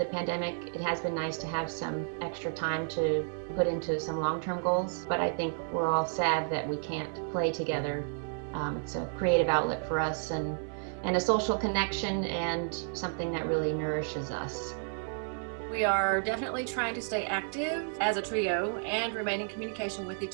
pandemic. It has been nice to have some extra time to put into some long-term goals, but I think we're all sad that we can't play together. It's a creative outlet for us and a social connection and something that really nourishes us. We are definitely trying to stay active as a trio and remain in communication with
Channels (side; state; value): left; silent; 57 dB below the other